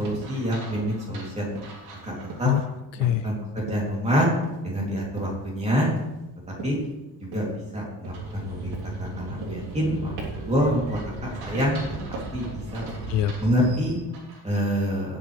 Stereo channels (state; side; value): normal; both; correlation 0.49